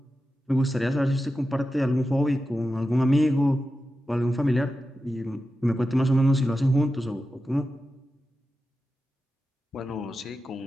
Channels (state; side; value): normal; both; correlation 0.91